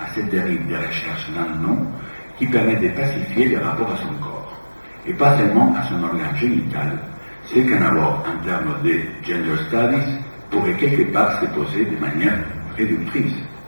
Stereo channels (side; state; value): both; inverted; correlation -1.00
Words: à cette dérive des recherches d'un nom qui permet de pacifier les rapports à son corps, et pas seulement à son organe génital, ce qu'un abord en termes de gender studies pourrait quelque part se poser de manière réductrice.